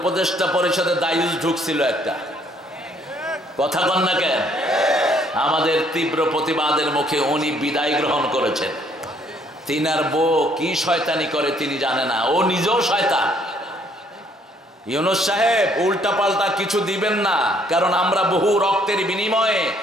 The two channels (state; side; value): normal; both; correlation 0.65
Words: পরিষদে দায়ুস ঢুকছিল একটা, কথা বল না কেন? আমাদের তীব্র প্রতিবাদের মুখে উনি বিদায় গ্রহণ করেছেন। তিনার বউ কি শয়তানি করে তিনি জানে না, ও নিজেও শয়তান। ইউনূস সাহেব উল্টা পাল্টা কিছু দিবেন না, কারণ আমরা বহু রক্তের বিনিময়ে